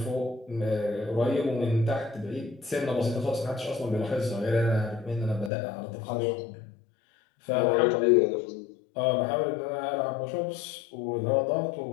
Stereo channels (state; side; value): drops out; right; at 5.5 s